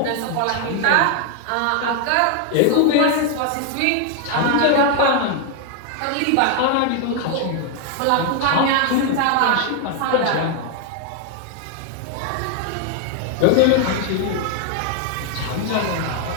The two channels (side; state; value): both; different; correlation 0.00